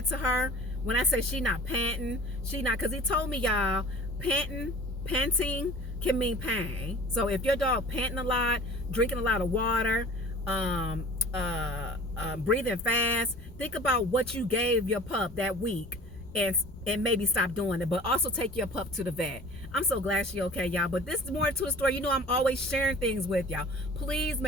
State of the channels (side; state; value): both; normal; correlation 0.43